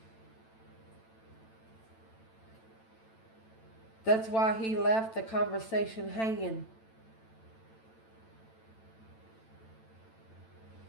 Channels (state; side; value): late; right; 9.0 ms